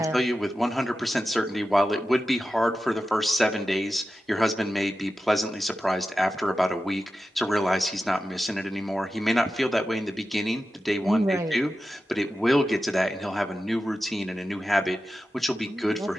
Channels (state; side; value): normal; both; correlation 0.92